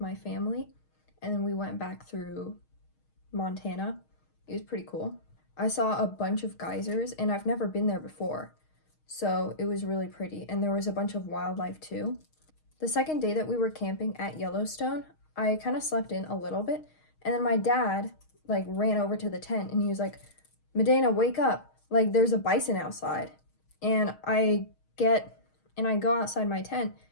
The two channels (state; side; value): late; right; 6.4 ms